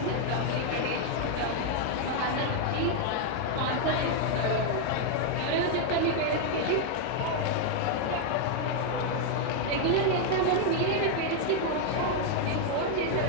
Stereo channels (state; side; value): different; both; correlation 0.00